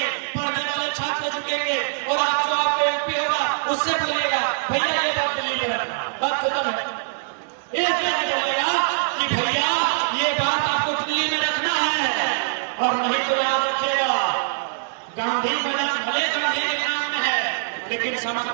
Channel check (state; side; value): silent; left; digital silence